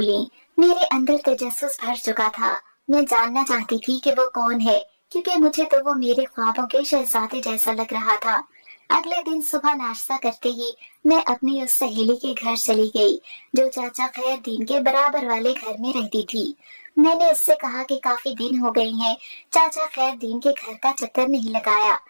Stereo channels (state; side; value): inverted; both; correlation -1.00